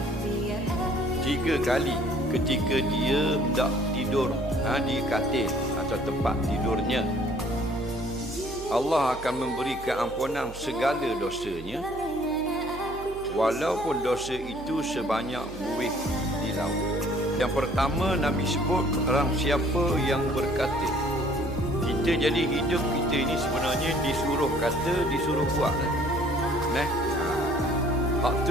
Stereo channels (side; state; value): right; noise; hum, 15 dB below the sound